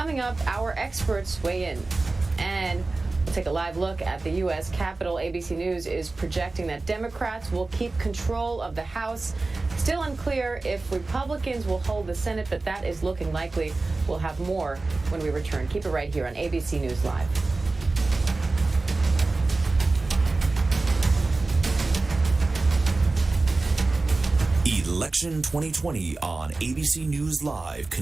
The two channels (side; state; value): left; quieter; 3.4 dB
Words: coming up, our experts weigh in. And we'll take a live look at the U.S. Capitol. ABC News is projecting that Democrats will keep control of the House. Still unclear if Republicans will hold the Senate, but that is looking likely. We'll have more when we return. Keep it right here on ABC News Live. Election 2020 on ABC News Live